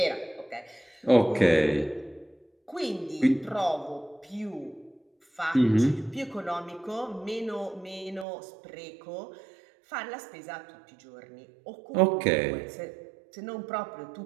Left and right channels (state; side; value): drops out; left; at 8.2 s